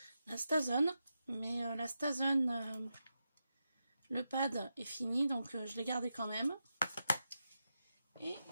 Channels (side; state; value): both; inverted; correlation -0.88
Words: la Stason, mais la Stason, le pad est fini donc je l'ai gardé quand même. Et